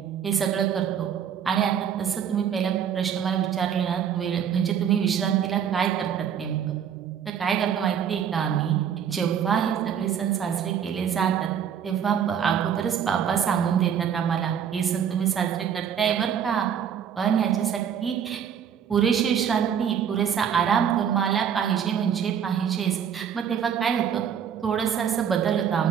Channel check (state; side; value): quieter; left; 8.3 dB